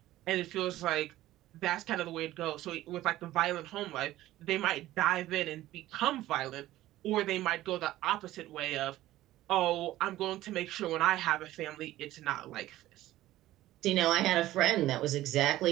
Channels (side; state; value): left; quieter; 15.3 dB